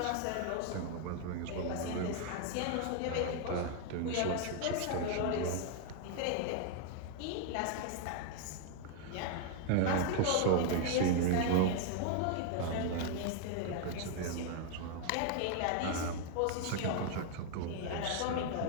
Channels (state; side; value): different; both; correlation 0.00